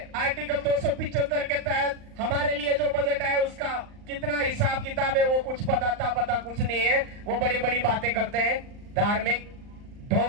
आर्टिकल 275 के तहत हमारे लिए जो बजट है उसका कितना हिसाब किताब है वो कुछ पता कुछ नहीं है। वो बड़ी बड़ी बातें करते हैं, धार्मिक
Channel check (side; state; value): left; late; 39 ms